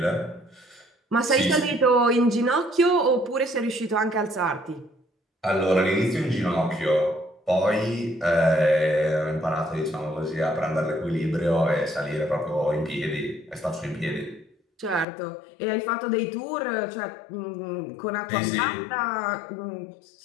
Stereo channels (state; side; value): drops out; right; at 15.1 s